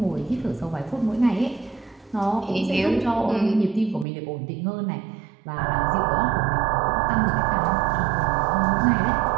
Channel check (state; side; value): drops out; left; at 4.0 s